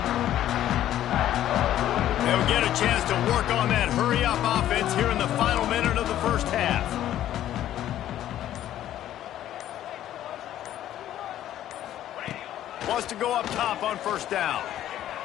They'll get a chance to work on that hurry-up offense here in the final minute of the first half. Wants to go up top on first down.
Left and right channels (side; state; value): right; quieter; 12.2 dB